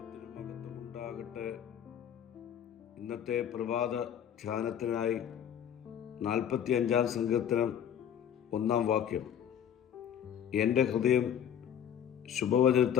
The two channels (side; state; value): right; quieter; 9.2 dB